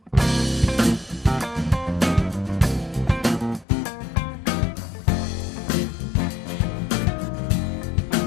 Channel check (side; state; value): right; drops out; at 3.7 s